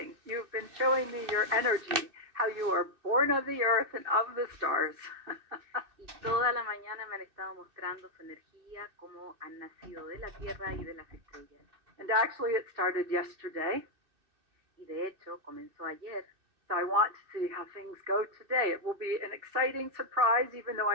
you've been showing me your energy, how you are born of the earth and of the stars. Y toda la mañana me han estado mostrando su energía, cómo han nacido de la tierra y de las estrellas. And actually it started yesterday. Y de hecho comenzó ayer. So I want to see how things go today. It will be an exciting surprise, even though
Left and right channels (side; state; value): left; late; 2.6 ms